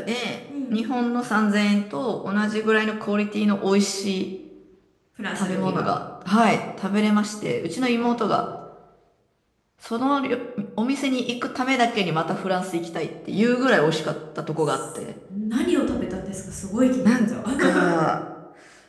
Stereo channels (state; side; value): identical; both; correlation 1.00